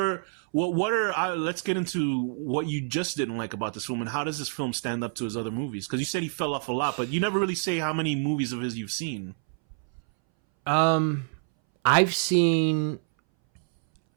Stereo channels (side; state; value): left; silent; 60 dB below the other